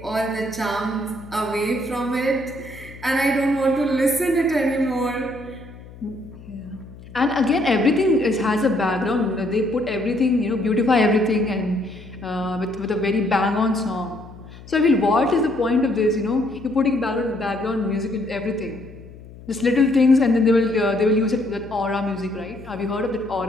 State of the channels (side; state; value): left; noise; hum, 18 dB below the sound